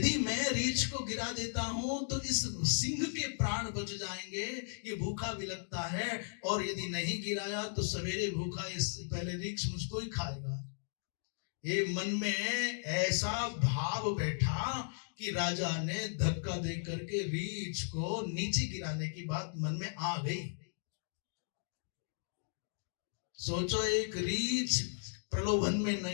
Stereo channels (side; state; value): right; silent; digital silence